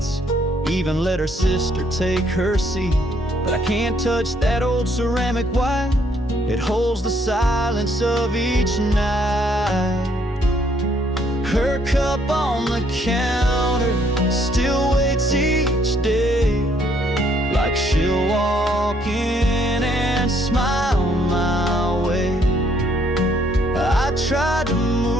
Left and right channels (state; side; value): normal; both; correlation 0.68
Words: even let her sister take her seat. But I can't touch that old ceramic white, it holds the silence of each night. Her cup on the counter still waits each day, like she'll walk in and smile my way. I tried to